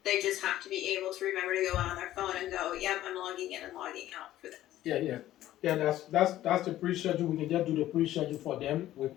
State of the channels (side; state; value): right; quieter; 13.9 dB